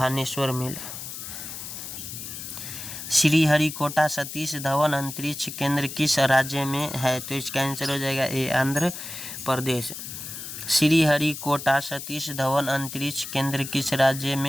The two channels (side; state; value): left; noise; hiss, 9 dB below the sound